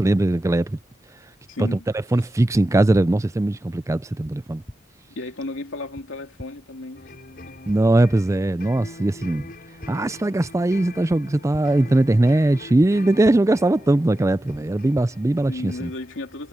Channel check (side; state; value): both; normal; correlation 0.92